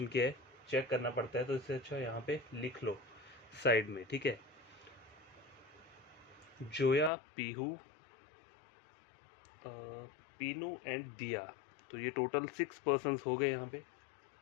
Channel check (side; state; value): right; drops out; at 7.1 s